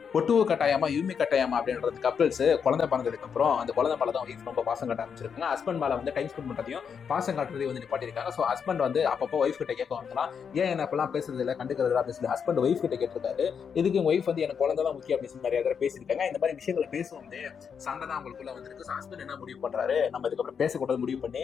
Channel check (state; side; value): quieter; right; 6.8 dB